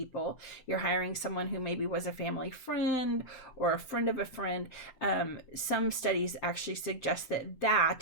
You're hiring someone who maybe was a family friend or a friend of a friend. Some studies actually suggest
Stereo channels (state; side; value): late; right; 7.7 ms